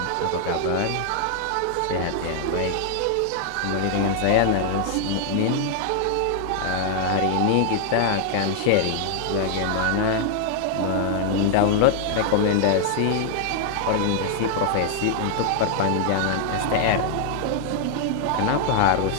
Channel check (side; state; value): both; different; correlation 0.00